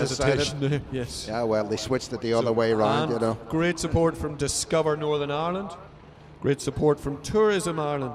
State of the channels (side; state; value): both; identical; correlation 1.00